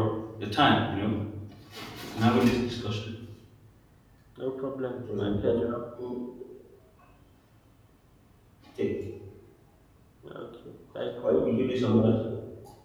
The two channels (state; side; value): identical; both; correlation 1.00